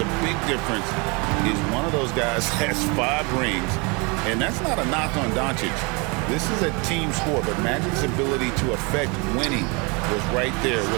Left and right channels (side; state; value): left; quieter; 30.0 dB